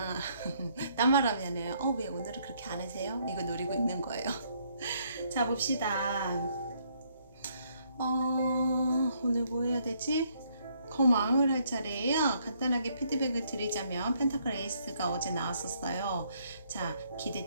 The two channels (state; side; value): inverted; both; correlation -0.69